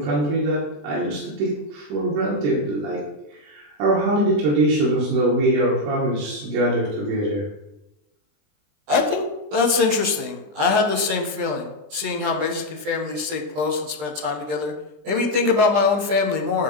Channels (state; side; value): late; left; 20 ms